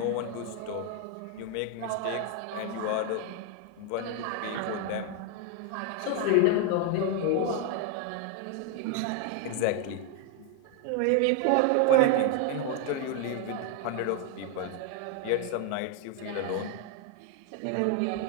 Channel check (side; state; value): both; different; correlation 0.01